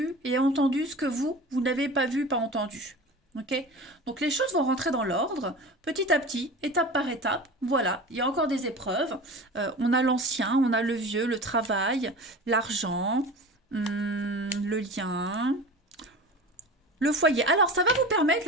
et a entendu ce que vous n'avez pas vu, pas entendu. Okay? Donc les choses vont rentrer dans l'ordre, petit à petit, étape par étape. Voilà, il y a encore des épreuves. On a l'ancien, on a le vieux, le travail, l'argent, le lien, le foyer. Alors, ça va vous permettre,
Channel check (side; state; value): both; normal; correlation 0.34